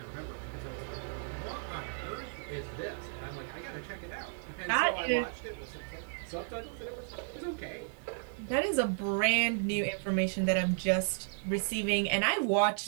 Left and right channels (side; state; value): left; silent; digital silence